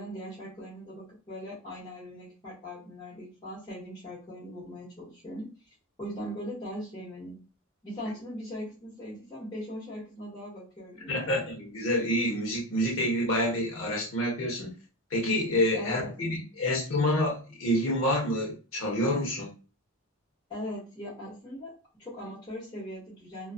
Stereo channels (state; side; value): normal; both; correlation 0.19